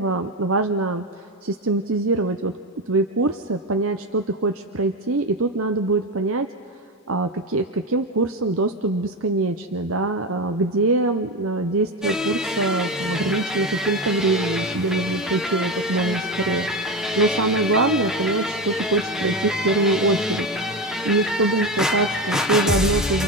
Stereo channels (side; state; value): both; normal; correlation 0.18